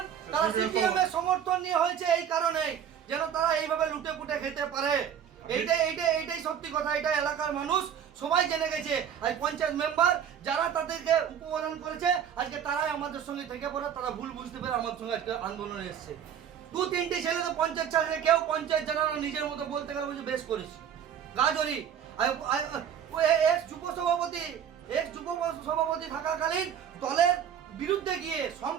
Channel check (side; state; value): left; quieter; 8.7 dB